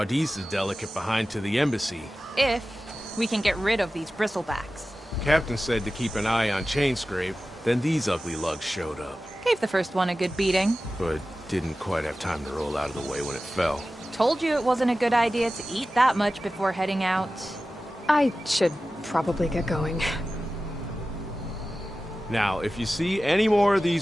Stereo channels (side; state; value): both; normal; correlation 0.95